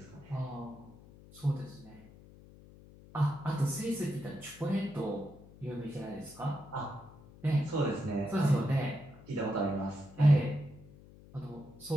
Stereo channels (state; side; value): noise; left; hum, 21 dB below the sound